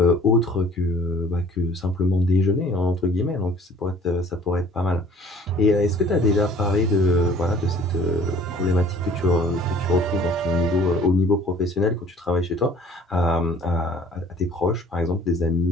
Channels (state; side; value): normal; both; correlation 0.52